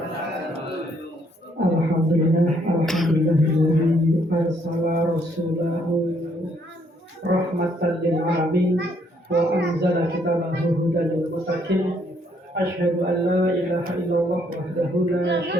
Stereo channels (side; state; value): both; normal; correlation 0.69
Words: Alhamdulillah, alhamdulillahilladzi arsala rasulahu rahmatan lil alamin wa anzala kitabahu hudan lil muttaqin. Asyhadu an la ilaha illallah wahdahu la